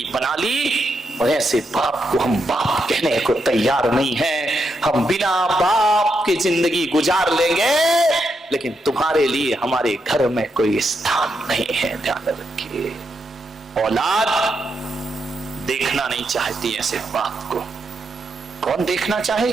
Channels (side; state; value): both; normal; correlation 0.82